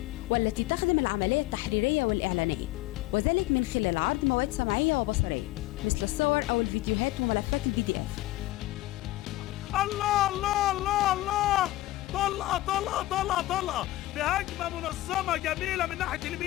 والتي تخدم العملية التحريرية والإعلانية، وذلك من خلال عرض مواد سمعية وبصرية مثل الصور أو الفيديوهات وملفات الفيديو. الله الله الله الله، طلقة طلقة طلقة طلقة بهجمة منظمة جميلة من ناحية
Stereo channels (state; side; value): quieter; right; 17.0 dB